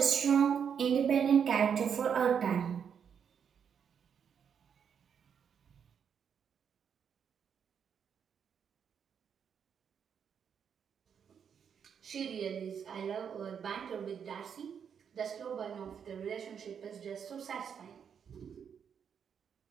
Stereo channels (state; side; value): quieter; left; 7.5 dB